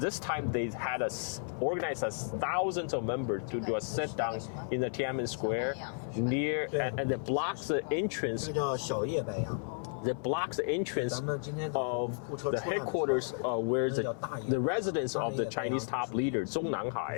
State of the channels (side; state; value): right; silent; 56 dB below the other